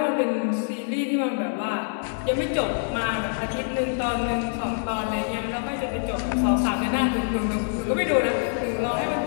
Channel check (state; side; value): silent; right; digital silence